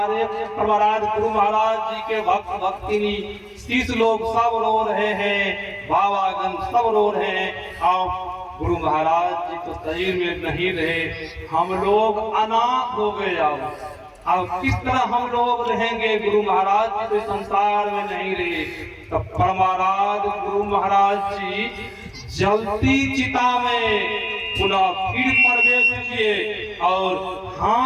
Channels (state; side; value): identical; both; correlation 1.00